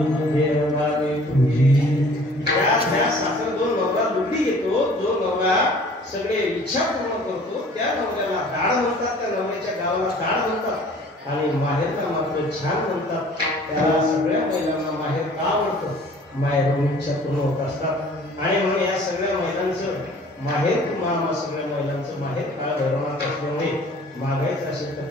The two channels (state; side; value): normal; both; correlation 0.51